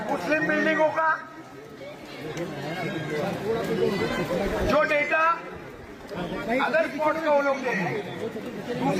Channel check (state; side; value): identical; both; correlation 1.00